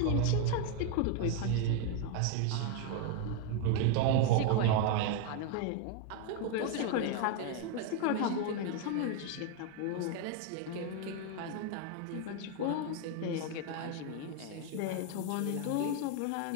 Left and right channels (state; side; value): different; both; correlation 0.01